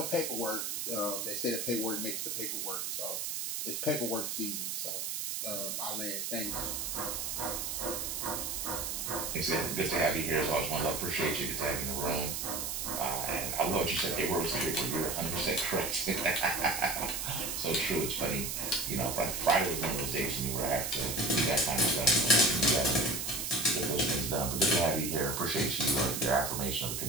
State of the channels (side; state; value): right; noise; hiss, 3 dB below the sound